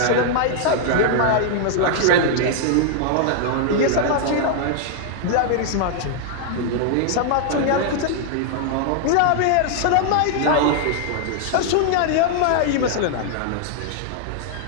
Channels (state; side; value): different; both; correlation -0.01